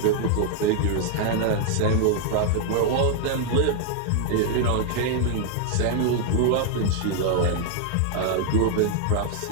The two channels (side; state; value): both; different; correlation 0.00